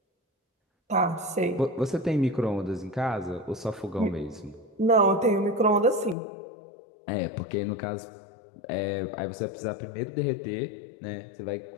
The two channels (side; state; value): right; drops out; at 6.2 s